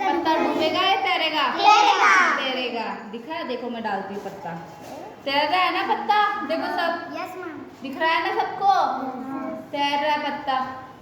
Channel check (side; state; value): both; identical; correlation 1.00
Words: डूबेगा या तैरेगा? तैरेगा। दिखा है, देखो मैं डालती हूँ पत्ता, तैर रहा है ना पत्ता। देखो सब दिख रहा है ना सबको, तैर रहा है पत्ता,